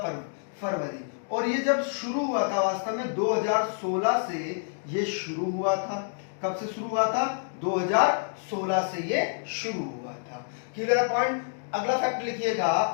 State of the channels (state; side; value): silent; right; digital silence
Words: फरवरी। और ये जब शुरू हुआ था, वास्तव में 2016 से ये शुरू हुआ था। कब से शुरू हुआ था? 2016 से ये शुरू हुआ था। Clear point? अगला फैक्ट लिखिएगा,